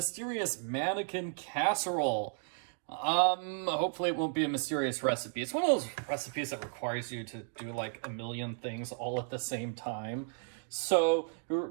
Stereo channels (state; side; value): silent; left; 55 dB below the other